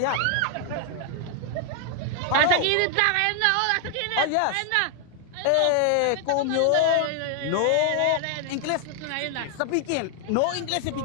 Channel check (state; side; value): different; both; correlation 0.00